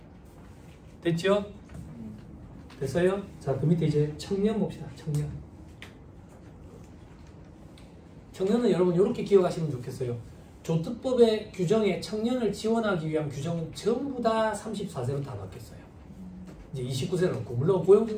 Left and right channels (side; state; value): both; identical; correlation 1.00